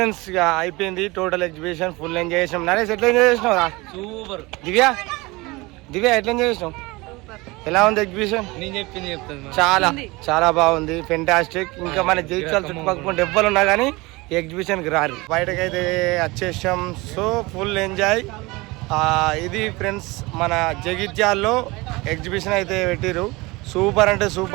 ఇక అయిపోయింది టోటల్ ఎగ్జిబిషన్, ఫుల్ ఎంజాయ్ చేసినాం. నరేష్ ఎట్లా ఎంజాయ్ చేసినావు? సూపర్. దివ్య ఎట్లా ఎంజాయ్ చేసినావు? ఎలా ఉంది ఎగ్జిబిషన్? నేను చెప్పింది చెప్తాను. చాలా చాలా బాగుంది, ఫెంటాస్టిక్. ఇంకా మన జైత్యాల చుట్టుపక్కల ఎవ్వరు ఉన్నా కానీ ఈ ఎగ్జిబిషన్కి రారు. బయటకైతే వచ్చేసాం. So full enjoy. ఇది ఫ్రెండ్స్ మన జగిత్యాల్లో ఎగ్జిబిషన్ అయితే పెట్టిరు. సూపర్ అంటే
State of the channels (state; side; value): quieter; left; 23.1 dB